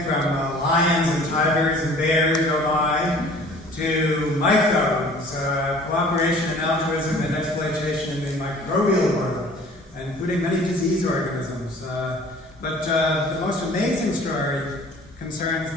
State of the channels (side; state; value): both; normal; correlation 0.49